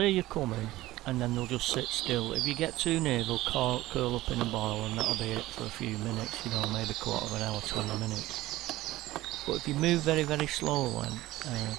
you coming, and then they'll just sit still. If you get too near, they'll curl up in a ball, and that'll be it for a few minutes, maybe quarter of an hour, 20 minutes. But if you move very, very slowly and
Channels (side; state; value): left; quieter; 16.9 dB